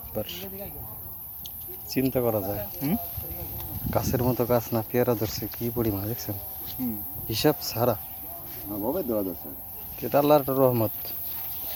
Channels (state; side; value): identical; both; correlation 1.00